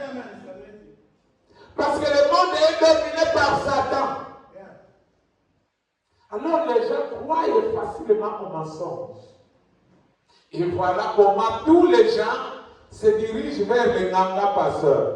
amen. Parce que le monde est dominé par Satan. Alors les gens croient facilement aux mensonges. Et voilà comment tous les gens se dirigent vers les Ganga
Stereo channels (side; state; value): both; identical; correlation 1.00